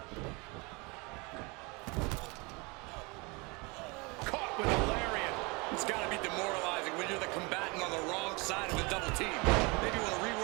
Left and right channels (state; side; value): quieter; left; 27.8 dB